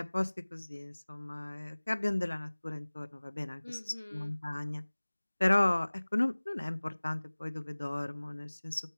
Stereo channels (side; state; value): both; inverted; correlation -1.00